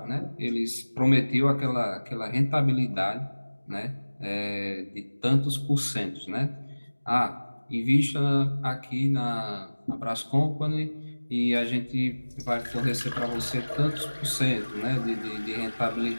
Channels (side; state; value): both; inverted; correlation -1.00